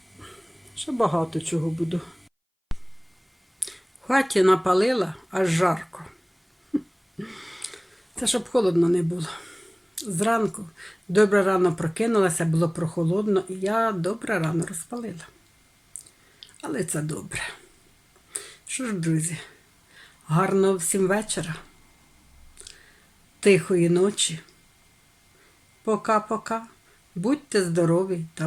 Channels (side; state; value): both; identical; correlation 1.00